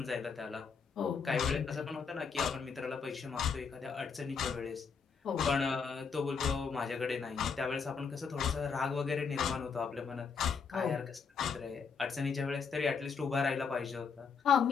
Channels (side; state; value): right; quieter; 5.8 dB